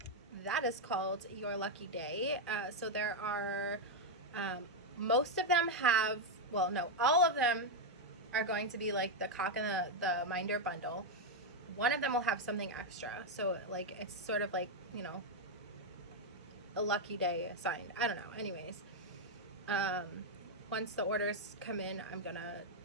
That is called Your Lucky Day. So there are, most of them have, well, no, all of them are going to be like the cock and the minder bundle. One of them will have something extra, so like it's sort of like, you know, a lucky day assigned. I don't know. Anyways, once the orders come in, I'm gonna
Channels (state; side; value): normal; both; correlation 0.01